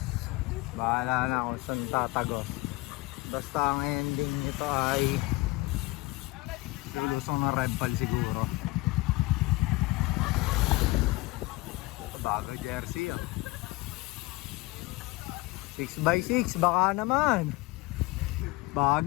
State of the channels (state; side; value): quieter; right; 21.3 dB